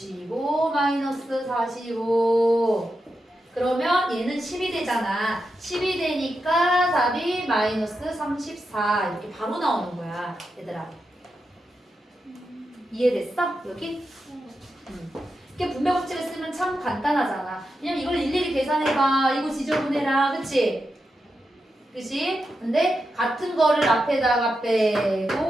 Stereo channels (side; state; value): both; normal; correlation 0.88